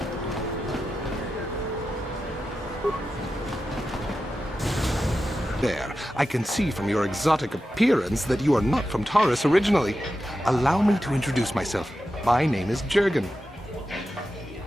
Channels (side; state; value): both; normal; correlation 0.91